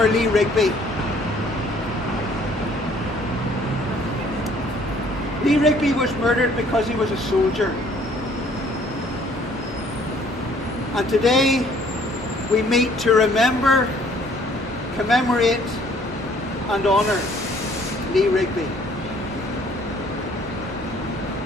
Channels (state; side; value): normal; both; correlation 0.59